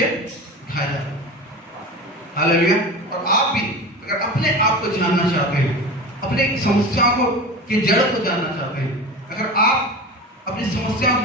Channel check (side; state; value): both; normal; correlation 0.30